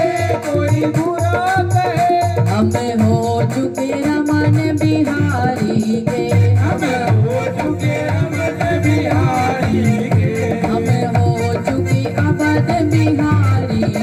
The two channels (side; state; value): both; identical; correlation 1.00